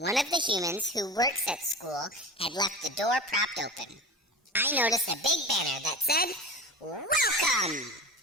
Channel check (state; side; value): normal; both; correlation 0.31